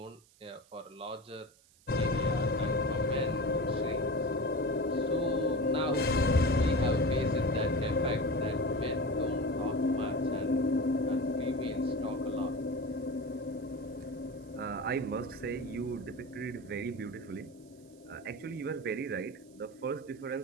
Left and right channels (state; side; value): noise; right; hiss, 29 dB below the sound